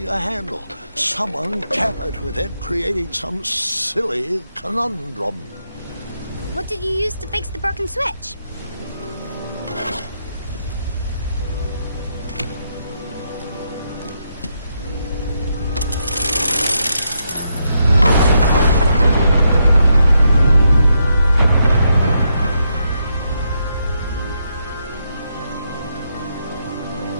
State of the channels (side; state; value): both; inverted; correlation -0.80